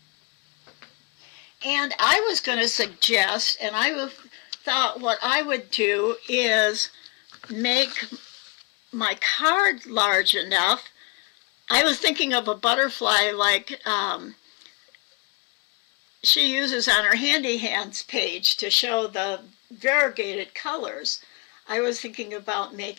And I was going to suggest, and I thought what I would do is make my card large enough. I was thinking of a butterfly like she uses on her Handy Hands page to show the variegated colors. I was thinking about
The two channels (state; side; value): quieter; right; 29.7 dB